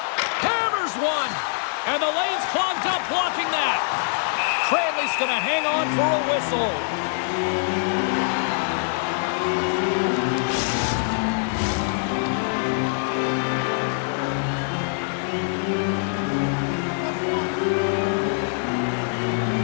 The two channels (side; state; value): right; silent; 63 dB below the other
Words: Hammers one, and the lane's clogged up blocking that. Cranley's going to hang on for a whistle.